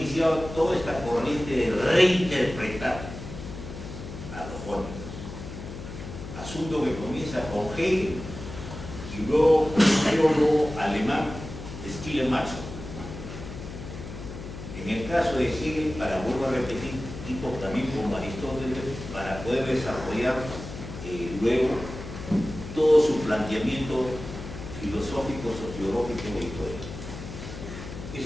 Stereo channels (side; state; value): left; noise; hum, 11 dB below the sound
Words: toda esta corriente de reinterpretar a los jóvenes. Asunto que comienza con Hegel y luego con el teólogo alemán Schleiermacher. En el caso de Hegel, vuelvo a repetir, tipo también como Aristóteles, para poder desarrollar luego todo su planteamiento filosófico, sociológico y histórico.